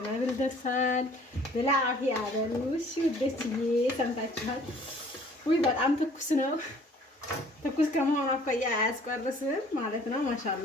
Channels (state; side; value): normal; both; correlation 0.54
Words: ደርሷል። بالعافية አበሉሽ ውዶችዬ ሰምታችኋል። ውይ በጣም ትኩስ ነው። ትኩስ ከመሆኑ አኳያ አያስቆርስም ማለት ነው።